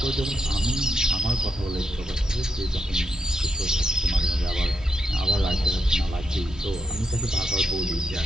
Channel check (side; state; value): both; normal; correlation 0.82